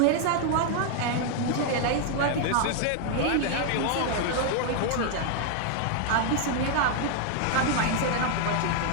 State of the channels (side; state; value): both; different; correlation 0.00